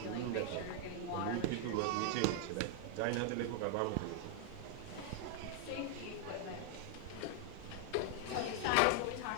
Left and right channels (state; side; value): different; both; correlation 0.00